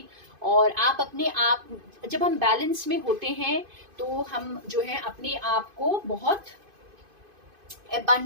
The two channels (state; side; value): late; left; 2.5 ms